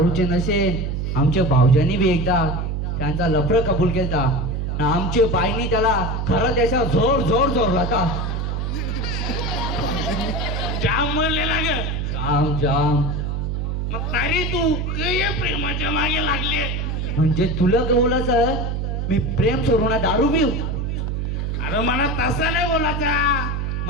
नशे आमच्या भाऊजांनी बी एकदा त्यांचा लफडं कबूल केलता. आमच्या बाईनी त्याला खरं त्याच्या जोर होता. जाम म्हणलेला ग. जाम मग तरी तू या प्रेमाच्या मागे लागले. म्हणजे तुला बोलायचं मी प्रेम सोडू ना दारू पिऊ? अरे मला तसा नाही बोलायचा.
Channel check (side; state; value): right; noise; hum, 1 dB below the sound